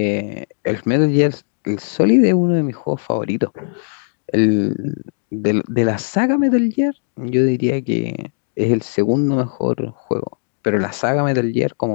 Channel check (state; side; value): silent; right; digital silence